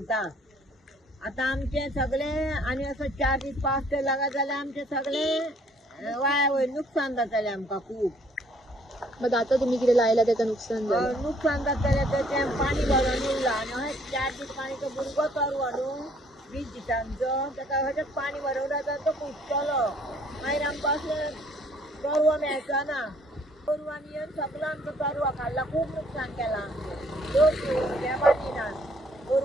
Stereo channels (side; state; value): both; normal; correlation 0.62